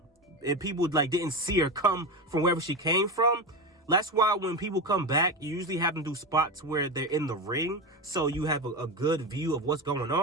And people like didn't see her come from wherever she came from. That's why when people come back, you usually have them do spots where they're in the ring, so you have a good view of what's going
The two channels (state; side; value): normal; both; correlation 0.19